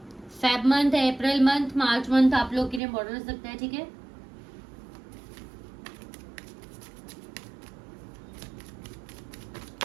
फेब मंथ है, अप्रैल मंथ, मार्च मंथ आप लोग के लिए इंपॉर्टेंट हो सकता है, ठीक है।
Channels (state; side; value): drops out; left; at 2.8 s